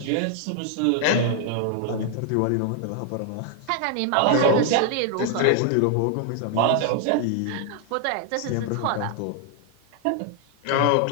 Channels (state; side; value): different; both; correlation 0.00